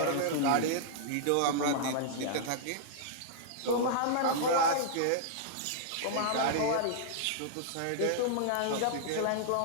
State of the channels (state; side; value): different; both; correlation -0.02